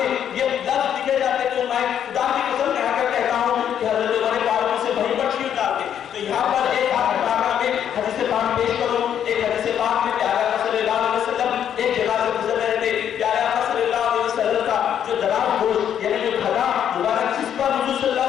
یہ لفظ لکھے جاتے، تو میں خدا کی قسم کہہ کر کہتا ہوں کہ حضرت عمر فاروق سے بھری پر چھیڑ ڈالتے۔ تو یہاں پر ایک بات میں حدیث پاک پیش کروں، ایک حدیث پاک میں پیارے آقا صلی اللہ علیہ وسلم ایک جگہ سے گزر رہے تھے، پیارے آقا صلی اللہ علیہ وسلم کا جو دراز گوشت یعنی جو کھدا مبارک جس پر حضور صلی اللہ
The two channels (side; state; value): right; quieter; 9.3 dB